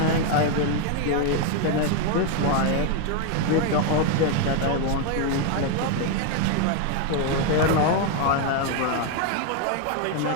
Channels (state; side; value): different; both; correlation 0.01